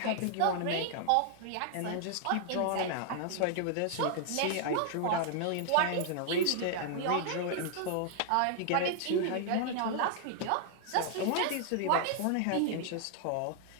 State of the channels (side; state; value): both; different; correlation 0.00